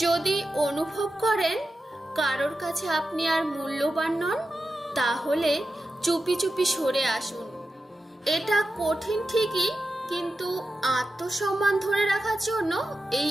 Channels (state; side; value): normal; both; correlation 0.91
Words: যদি অনুভব করেন কারোর কাছে আপনি আর মূল্যবান নন, তাহলে চুপি চুপি সরে আসুন। এটা কঠিন ঠিকই, কিন্তু আত্মসম্মান ধরে রাখার জন্য এই